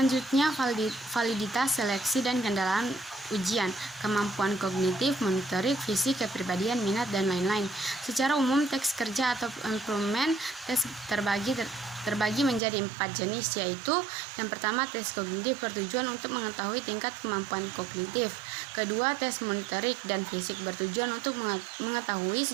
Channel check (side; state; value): left; drops out; at 12.6 s